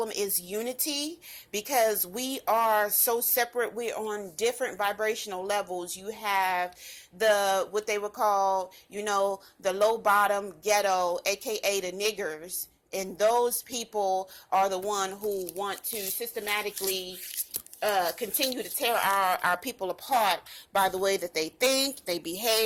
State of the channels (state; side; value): identical; both; correlation 1.00